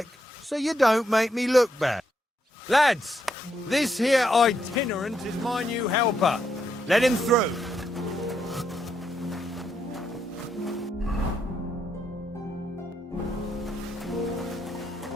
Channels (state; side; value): normal; both; correlation 0.78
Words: so you don't make me look bad. Lads, this here itinerant is my new helper. Let him through.